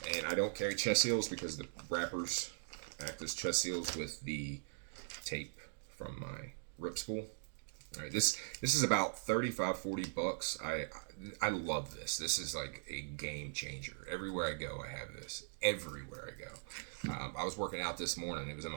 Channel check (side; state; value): left; silent; digital silence